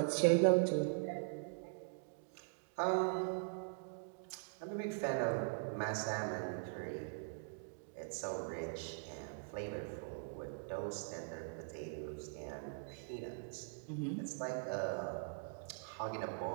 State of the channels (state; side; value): silent; left; digital silence